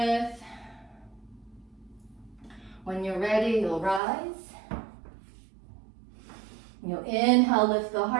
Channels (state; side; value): drops out; left; at 4.0 s